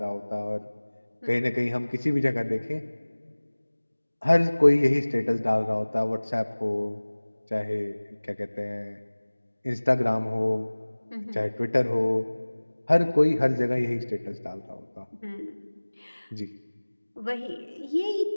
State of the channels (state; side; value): inverted; both; correlation -1.00